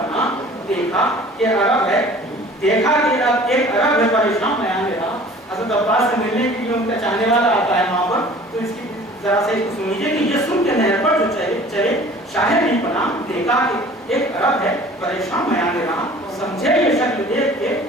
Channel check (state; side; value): normal; both; correlation 0.47